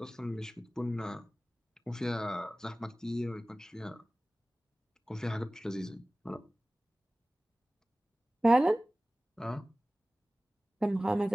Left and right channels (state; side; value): normal; both; correlation 0.98